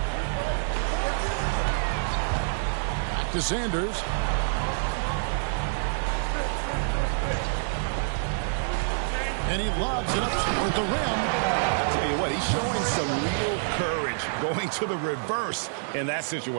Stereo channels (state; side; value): silent; left; digital silence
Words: Back to Sanders. And he lobs it up toward the rim. I tell you what, he's showing some real courage going to the reverse in that